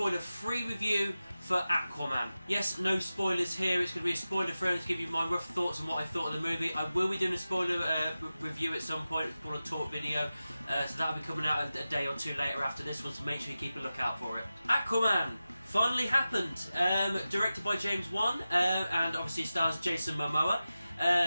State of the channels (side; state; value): both; inverted; correlation -0.94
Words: review for AquaMan. Yes, no spoilers here. It's going to be a spoiler-free to give you my rough thoughts on what I thought of the movie. I will be doing a spoiler review at some point. It's called a talk video, so that'll be coming out a day or two later after this one, so make sure you keep a lookout for it. AquaMan finally happened. Directed by James Wan, and obviously stars Jason Momoa.